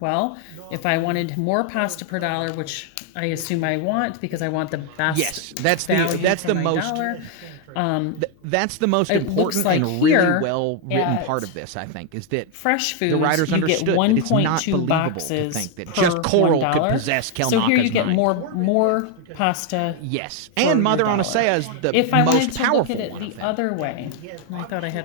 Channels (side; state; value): both; different; correlation 0.01